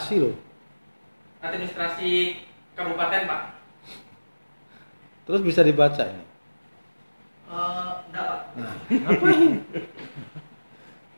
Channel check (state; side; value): inverted; both; correlation -1.00